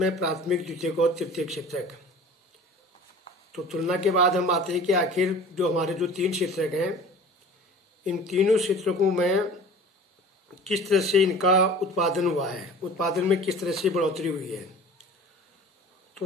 प्राथमिक, द्वितीयक और तृतीयक क्षेत्र। तो तुलना के बाद हम आते हैं कि आखिर जो हमारे जो 3 क्षेत्र हैं, इन तीनों क्षेत्रों में किस तरह से इनका उत्पादन हुआ है, उत्पादन में किस तरह से बढ़ोतरी हुई है। तो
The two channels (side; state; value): both; normal; correlation 0.42